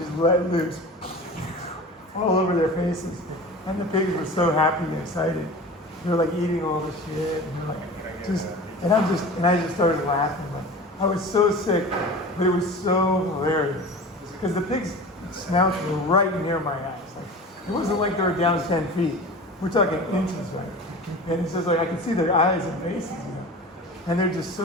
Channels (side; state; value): both; normal; correlation 0.36